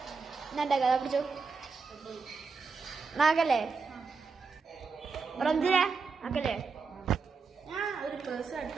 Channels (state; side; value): quieter; left; 4.8 dB